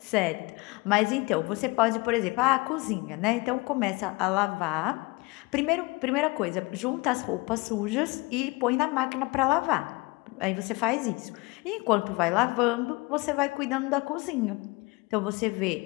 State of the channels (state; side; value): quieter; right; 25.2 dB